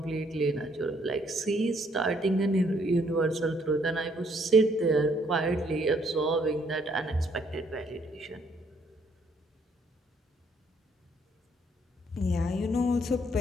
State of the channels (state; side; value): normal; both; correlation 0.67